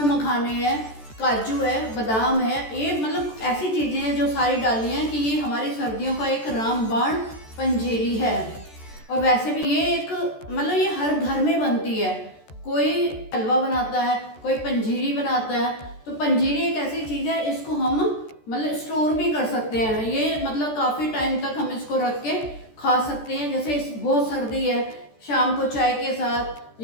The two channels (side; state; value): right; late; 14 ms